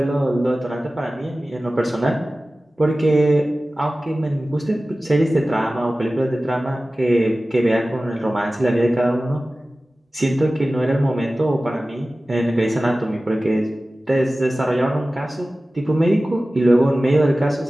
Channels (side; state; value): both; normal; correlation 0.96